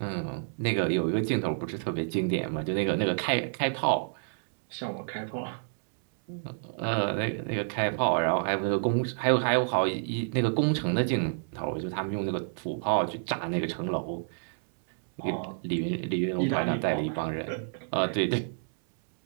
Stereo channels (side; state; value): left; silent; 59 dB below the other